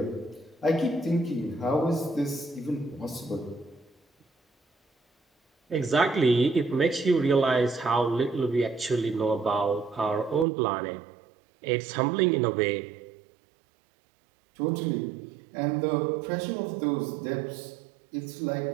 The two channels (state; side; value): drops out; left; at 10.5 s